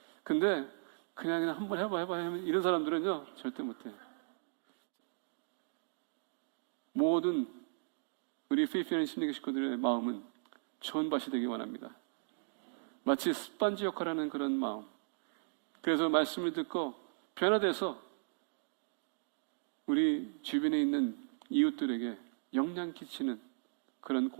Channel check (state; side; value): silent; left; digital silence